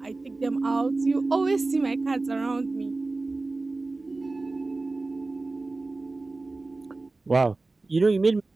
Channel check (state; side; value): quieter; left; 3.3 dB